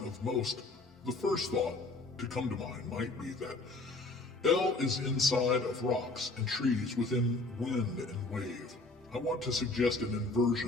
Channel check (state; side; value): quieter; right; 3.2 dB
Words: most, the first thought to come to mind might be that L is inside of rocks and trees within wind and wave. I want to suggest an